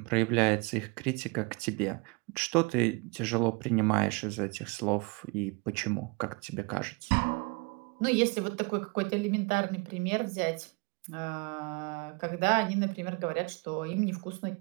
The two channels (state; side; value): quieter; left; 29.1 dB